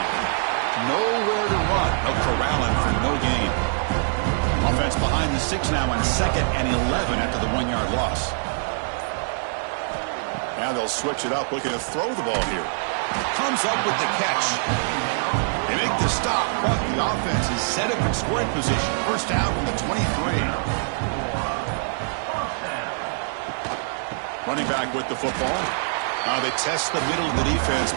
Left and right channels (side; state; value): left; silent; digital silence